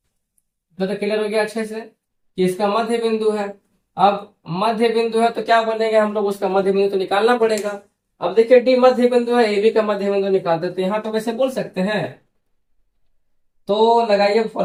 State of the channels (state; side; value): identical; both; correlation 1.00